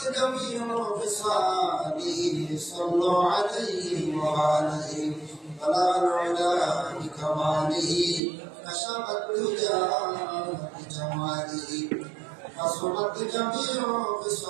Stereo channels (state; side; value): drops out; left; at 8.2 s